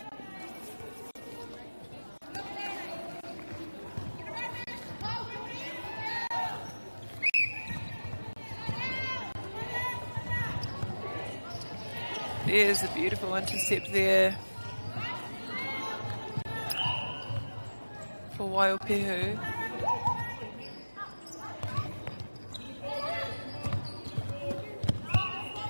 There's a beautiful intercept there for Waiupehu.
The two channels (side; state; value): both; inverted; correlation -1.00